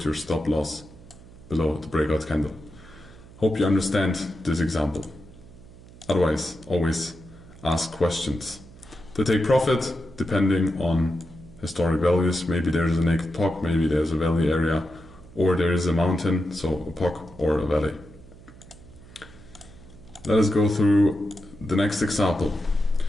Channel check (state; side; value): noise; right; hum, 20 dB below the sound